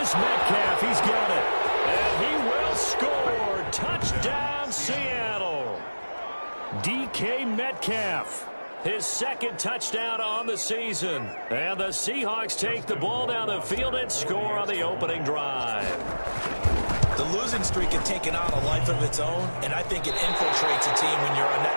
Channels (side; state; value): both; inverted; correlation -1.00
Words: Metcalf. He's got it. And he will score. Touchdown, Seattle. DK Metcalf. His 2nd touchdown on the season. And the Seahawks take the ball down the field and score on the opening drive. The losing streak had taken on a life of its own, and I think it infiltrates a team when you're on